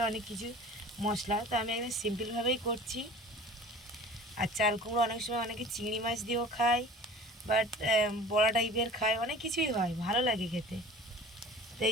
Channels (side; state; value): both; normal; correlation 0.43